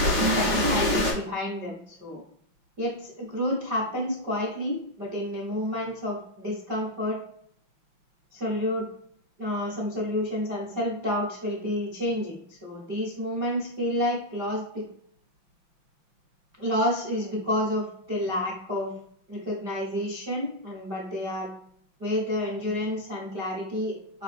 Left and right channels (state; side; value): late; left; 5.7 ms